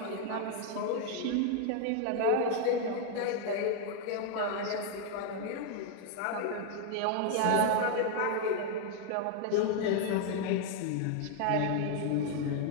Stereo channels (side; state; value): both; different; correlation 0.00